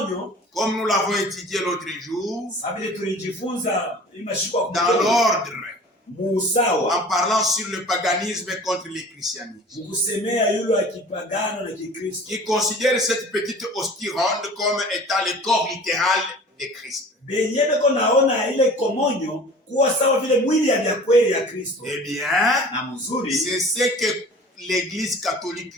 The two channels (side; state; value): both; normal; correlation 0.44